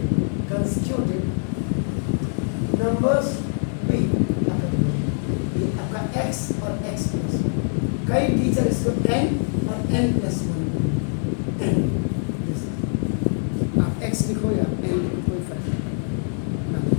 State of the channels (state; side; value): silent; right; 63 dB below the other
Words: consecutive numbers be, ये आपका x और x प्लस, कई टीचर इसको n और n प्लस 1 n, आप x लिखो या n लिखो कोई फर्क नहीं पड़ता।